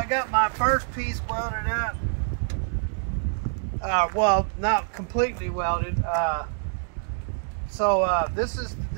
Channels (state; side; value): silent; left; digital silence